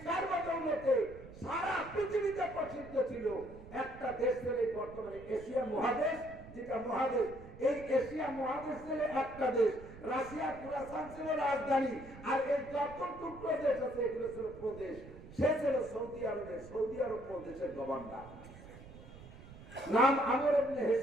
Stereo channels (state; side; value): noise; right; rumble, 17 dB below the sound